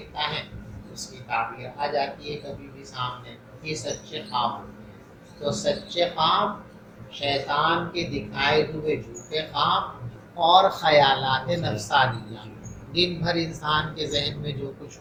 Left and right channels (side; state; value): both; identical; correlation 1.00